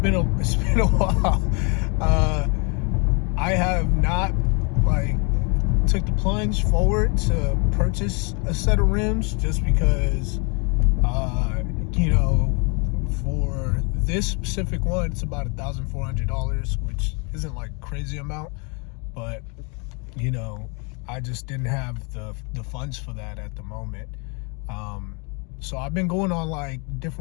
a while. I have not took the plunge forward to purchase a set of rims just because for this specific one, it's about $1,400, which isn't like crazy amount, but I just didn't have the funds for that at the moment. So I've been going on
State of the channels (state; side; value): quieter; right; 33.5 dB